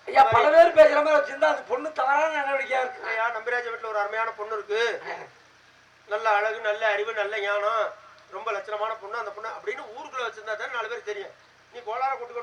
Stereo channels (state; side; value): identical; both; correlation 1.00